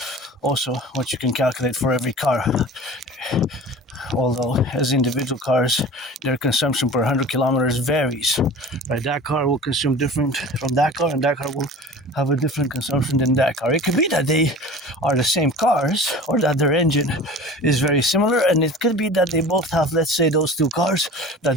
also what you can calculate for every car. Although as individual cars, their consumption per 100 kilometers varies. Right? That car will consume different from that car, and that car will have a different consumption than that car. It could be that they are the same cars, or that their engine is very similar, and it could be that they both have, let's say, those two cars,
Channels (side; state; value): both; normal; correlation 0.39